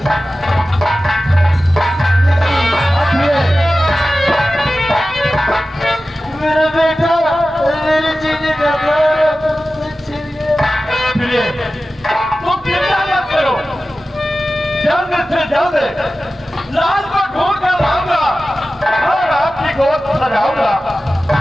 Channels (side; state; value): both; normal; correlation 0.95